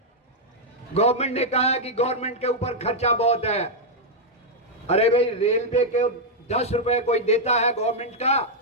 गवर्नमेंट ने कहा कि गवर्नमेंट के ऊपर खर्चा बहुत है। अरे भाई, रेलवे के 10 रुपए कोई देता है गवर्नमेंट का,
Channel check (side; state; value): both; normal; correlation -0.03